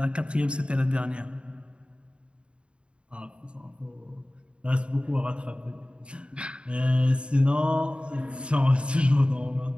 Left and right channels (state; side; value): late; left; 0.056 ms